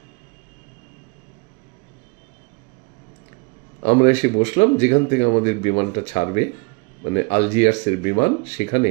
আমরা এসে বসলাম যেখান থেকে আমাদের বিমানটা ছাড়বে, মানে আলজিয়ার্সের বিমান, সেখানে।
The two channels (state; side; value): quieter; left; 30.9 dB